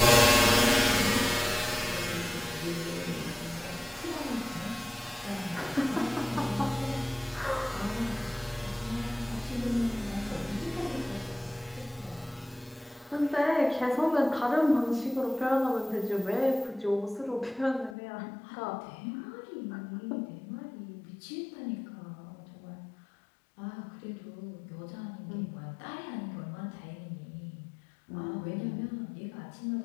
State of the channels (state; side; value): drops out; right; at 17.9 s